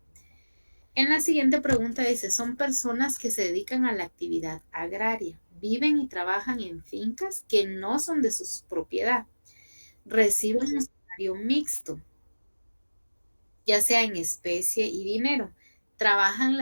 En la siguiente pregunta dice, son personas que se dedican a la actividad agraria, viven y trabajan en fincas que no son de su propiedad, reciben un salario mixto, ya sea en especie y dinero, trabajan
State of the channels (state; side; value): inverted; both; correlation -1.00